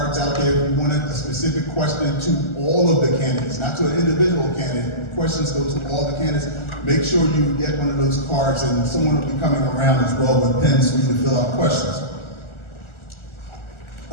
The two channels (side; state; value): right; late; 1.4 ms